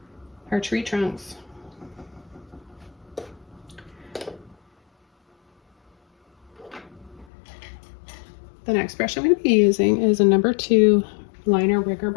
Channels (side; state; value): right; drops out; at 7.2 s